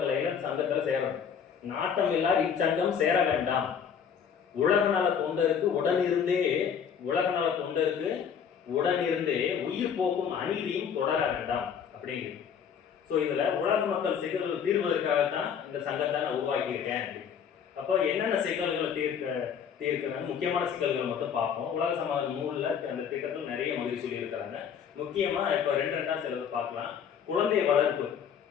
சங்கத்துல சேரணும். நாட்டமில்லா இச்சங்கம் சேர வேண்டாம். உலக நல தொண்டருக்கு உடனிருந்தே உயிர் போக்கும் அநீதியும் தொடர வேண்டாம் அப்படிங்கிறது. ஸோ இதுல உலக மக்கள் சிக்கல்கள் தீர்வதற்காகத்தான் இந்த சங்கத்தை நான் உருவாக்கியிருக்கேன். அப்போ என்னென்ன சிக்கல்களை தீர்க்கிறாங்க, முக்கியமான சிக்கல்கள் மட்டும் பார்ப்போம். உலக சமாதான நூலில் அந்த திட்டத்தில் நிறைய மகிழ்ச்சி சொல்லியிருக்கிறாங்க. முக்கியமாக இப்போ ரெண்டா சிலர் பார்க்கலாம். குழந்தை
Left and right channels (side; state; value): right; quieter; 7.5 dB